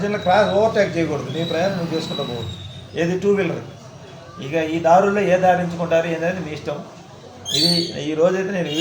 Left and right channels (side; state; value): both; identical; correlation 1.00